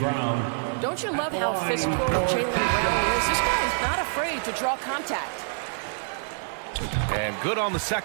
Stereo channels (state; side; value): silent; left; digital silence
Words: Don't you love how physical Jaylen Brown is? This guy's not afraid to draw contact. And good on the